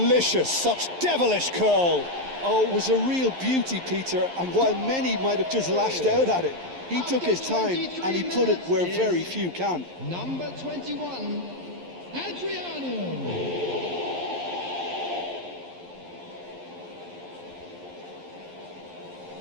such devilish curl. Oh, it was a real beauty, Peter, and while many might have just lashed out at it, he took his time and he put it where very few can. Number 21, Adriano.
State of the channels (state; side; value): late; left; 11 ms